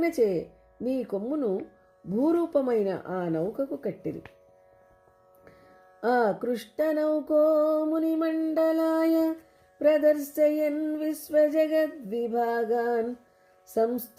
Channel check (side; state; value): both; identical; correlation 1.00